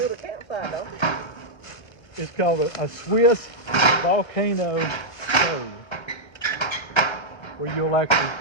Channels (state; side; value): late; right; 1.3 ms